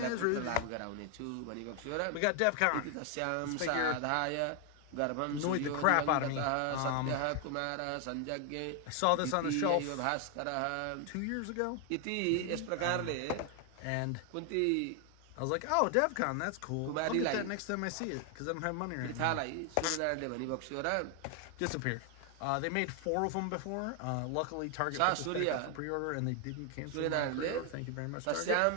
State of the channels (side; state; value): both; different; correlation 0.00